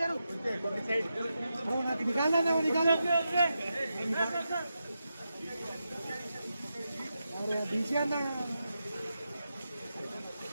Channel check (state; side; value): inverted; both; correlation -0.88